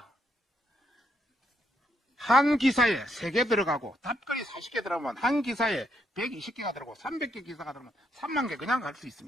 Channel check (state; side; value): normal; both; correlation 0.76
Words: 한 기사에 3개 들어가고 답글이 40개 들어가면 한 기사에 120개가 들어가고 300개 기사가 들어가면 3만 개 그냥 갈 수